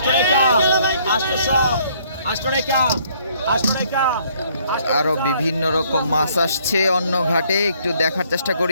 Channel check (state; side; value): inverted; both; correlation -0.64